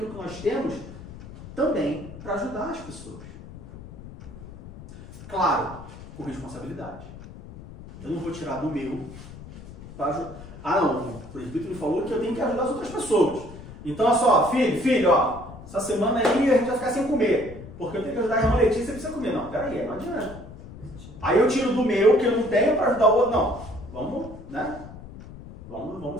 que nós temos, também para ajudar as pessoas. Claro, com responsabilidade. Eu não vou tirar do meu para ajudar. Ah não, o presbítero me falou que eu tenho que ajudar as outras pessoas. Então, olha só, filho, ó, essa semana aí a gente vai ficar sem comer, porque eu tenho que ajudar a irmã Letícia, você precisa comer. Não, peraí, não adianta. Aí eu tiro do meu, que eu não tenho, para ajudar o outro. Não, vamos, né?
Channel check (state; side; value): noise; left; rumble, 15 dB below the sound